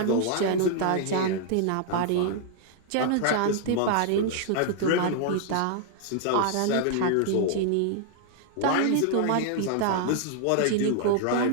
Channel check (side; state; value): both; different; correlation 0.00